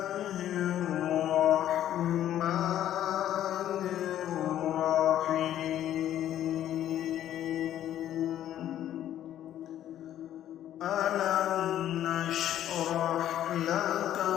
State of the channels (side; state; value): right; quieter; 11.7 dB